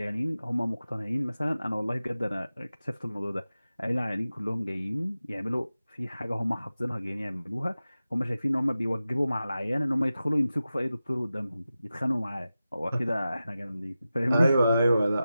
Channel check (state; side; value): inverted; both; correlation -0.94